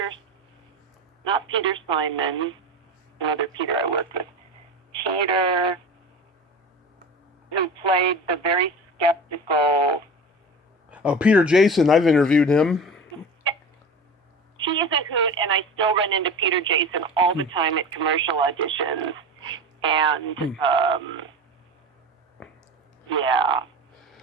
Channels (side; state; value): both; normal; correlation 0.31